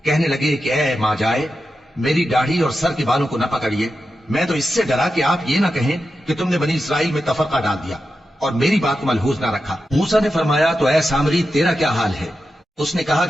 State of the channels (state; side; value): normal; both; correlation 0.90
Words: کہنے لگے کہ اے ماں جائے، میری داڑھی اور سر کے بالوں کو نہ پکڑیے، میں تو اس سے ڈرا کہ آپ یہ نہ کہیں کہ تم نے بنی اسرائیل میں تفرقہ ڈال دیا اور میری بات کو ملحوظ نہ رکھا۔ موسیٰ نے فرمایا تو اے سامری، تیرا کیا حال ہے؟ اس نے کہا